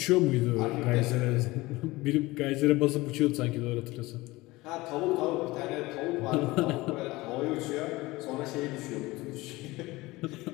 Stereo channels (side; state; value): right; quieter; 20.5 dB